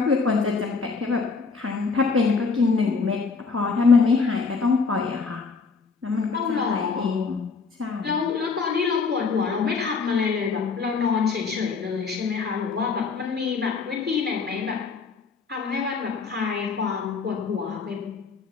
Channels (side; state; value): right; quieter; 4.8 dB